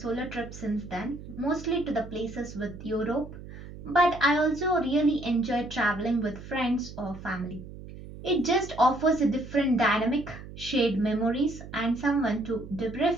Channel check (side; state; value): right; noise; hum, 14 dB below the sound